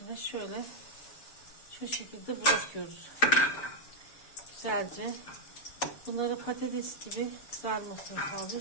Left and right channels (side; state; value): right; late; 6.9 ms